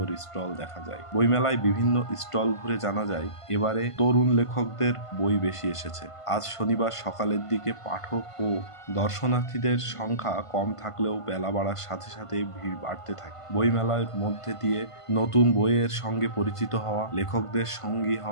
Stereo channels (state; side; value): late; right; 1.5 ms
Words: স্টল দেখা যায়। বইমেলায় বিভিন্ন স্টল ঘুরে জানা যায় এবারে তরুণ লেখকদের বই বেশি এসেছে। আজ শনিবার সকালের দিকে পাঠক ও দর্শনার্থীদের সংখ্যা কম থাকলেও বেলা বাড়ার সাথে সাথে ভিড় বাড়তে থাকে। বইমেলার মধ্যে দিয়ে নতুন বইয়ের সঙ্গে পরিচিত হওয়া, লেখকদের সঙ্গী